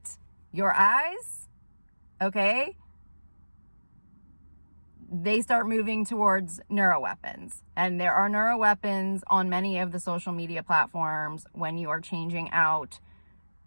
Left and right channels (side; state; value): both; inverted; correlation -1.00